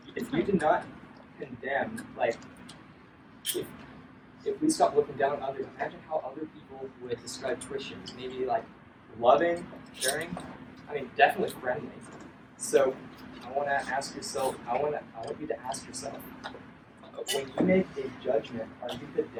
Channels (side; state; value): both; identical; correlation 1.00